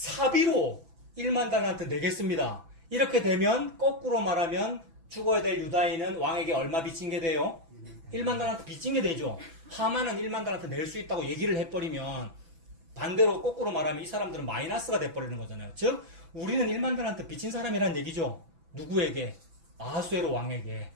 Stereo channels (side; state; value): left; late; 6.0 ms